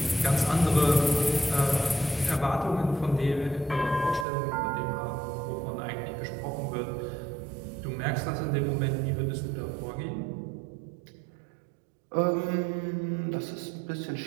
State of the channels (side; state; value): left; drops out; at 4.2 s